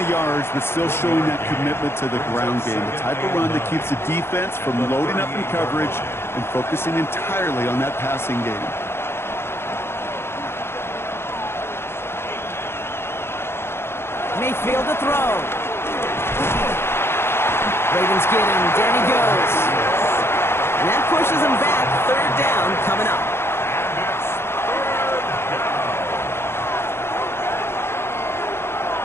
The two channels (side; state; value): right; late; 0.12 ms